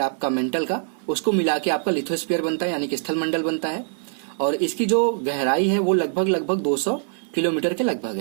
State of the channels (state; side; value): silent; left; 57 dB below the other